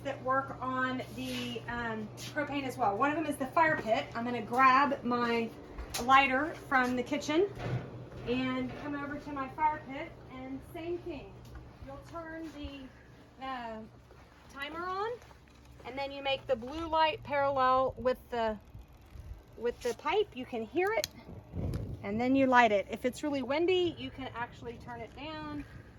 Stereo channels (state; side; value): identical; both; correlation 1.00